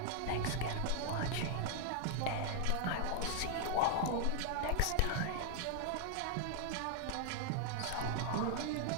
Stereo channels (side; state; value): both; different; correlation 0.00